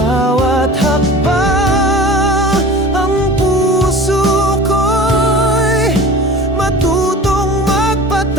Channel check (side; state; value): both; normal; correlation 0.39